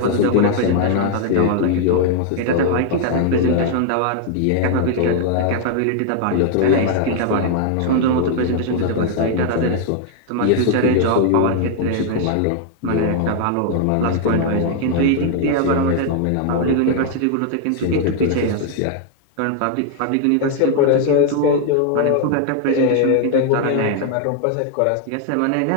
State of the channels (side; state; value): both; different; correlation 0.00